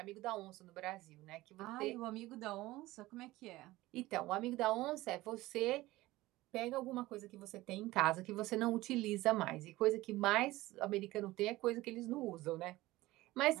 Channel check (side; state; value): left; quieter; 18.2 dB